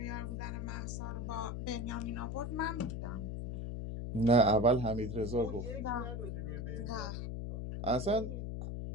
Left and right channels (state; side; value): noise; left; hum, 4 dB below the sound